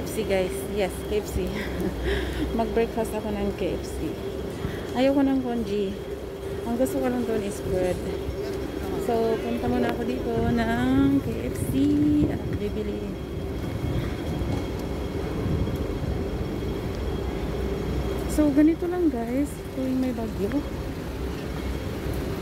guys. Yes, KFC. Mag-breakfast ako ng KFC. Ayoko ng congee. Ang gusto ko lang doon is bread. So, punta muna ako dito ng KFC at bibili. So ganito lang guys, tuwing may bagyo,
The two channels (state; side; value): identical; both; correlation 1.00